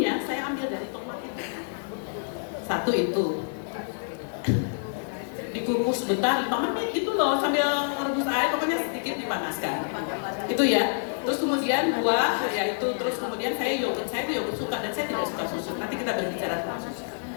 saya ambil dari tomat itu. Satu itu. Dikukus sebentar 5 menit gitu loh sambil merebus air, pokoknya sedikit dipanaskan itu ya. Terus kemudian buah ya itu, terus kemudian saya yogurt suka dan saya tidak suka susu, nanti kita berbicara tentang susu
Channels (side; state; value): right; silent; digital silence